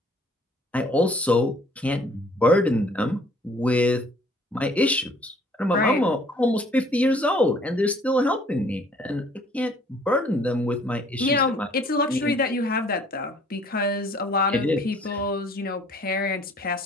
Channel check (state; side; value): normal; both; correlation 0.57